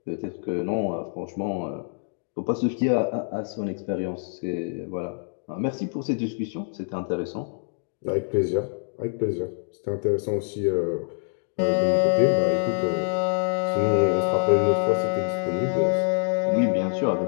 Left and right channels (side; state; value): right; silent; digital silence